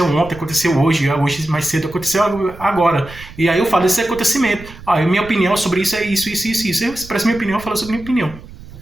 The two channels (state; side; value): noise; right; rumble, 17 dB below the sound